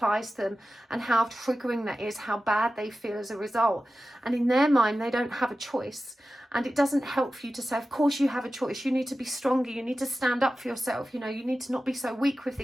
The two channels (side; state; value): both; normal; correlation 0.94